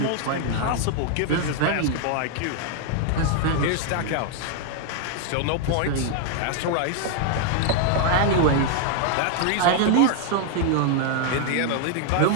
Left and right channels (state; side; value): different; both; correlation 0.00